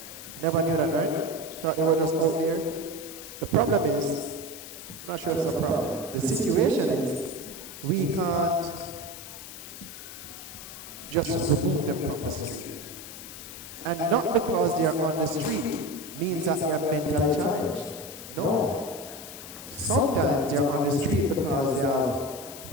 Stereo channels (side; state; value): left; noise; hiss, 12 dB below the sound